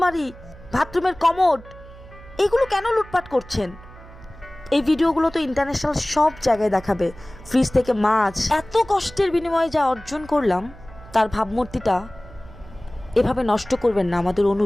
বাথরুমের কমোড এগুলো কেন লুটপাট করছেন? এই ভিডিওগুলো তো ইন্টারন্যাশনাল সব জায়গায় দেখাবে। ফ্রিজ থেকে মাছ, এত কষ্টের বিনিময়ে যা অর্জন করলাম তার ভাবমূর্তিটা এভাবে নষ্ট করবেন না, আমাদের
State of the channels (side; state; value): right; noise; hum, 19 dB below the sound